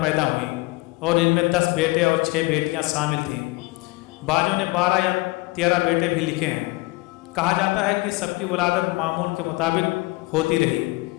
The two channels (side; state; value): right; quieter; 22.8 dB